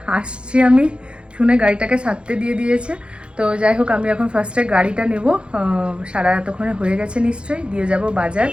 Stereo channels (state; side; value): late; left; 0.056 ms